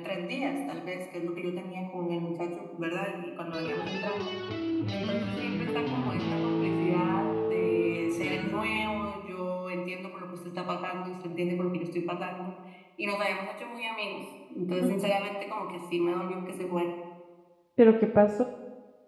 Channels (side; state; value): both; identical; correlation 1.00